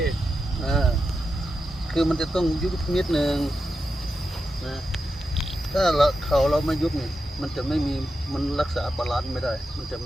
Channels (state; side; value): normal; both; correlation 0.88